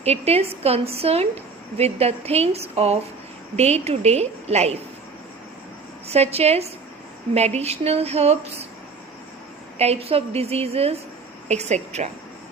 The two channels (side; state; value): left; quieter; 4.5 dB